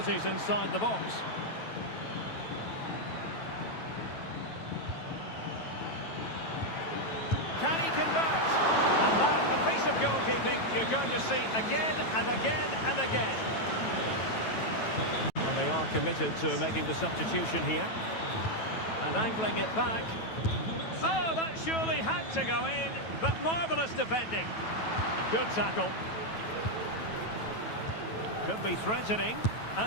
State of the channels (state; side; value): late; right; 9.2 ms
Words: inside the box. Can he convert? And that, a piece of goalkeeping you're going to see again and again and again. Well, they are committed to making the substitution here. And angling it back. Oh, that surely had to go in, but marvellous defending. Good tackle. Could be threatening,